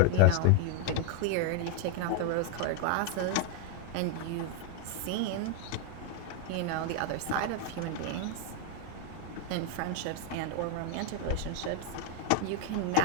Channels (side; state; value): both; different; correlation 0.00